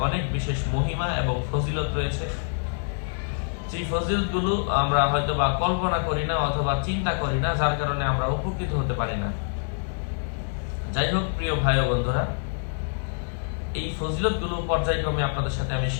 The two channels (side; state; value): right; silent; digital silence